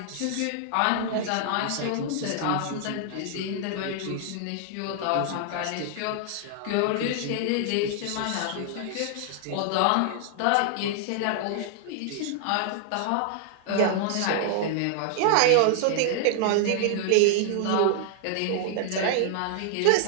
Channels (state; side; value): different; both; correlation 0.00